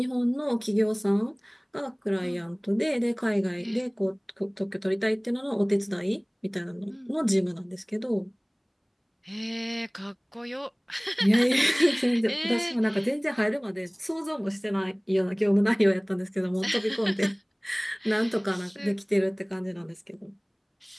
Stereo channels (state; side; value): identical; both; correlation 1.00